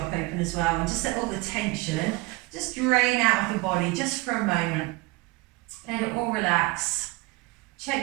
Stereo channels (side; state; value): left; quieter; 21.9 dB